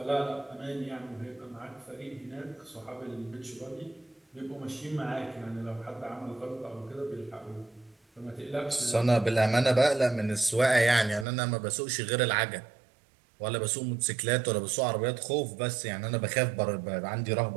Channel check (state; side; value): drops out; left; at 11.2 s